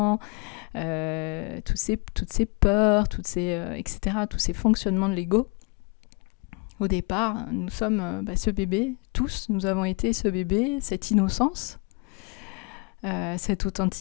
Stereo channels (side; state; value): right; quieter; 30.0 dB